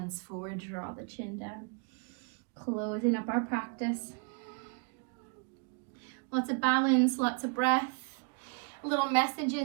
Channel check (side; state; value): left; quieter; 38.6 dB